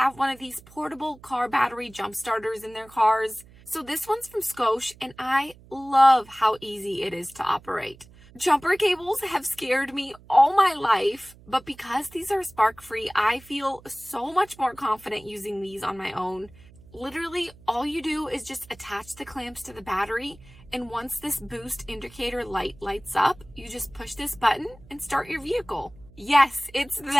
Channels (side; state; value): right; noise; hum, 23 dB below the sound